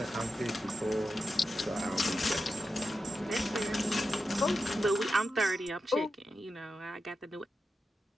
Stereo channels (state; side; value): normal; both; correlation 0.89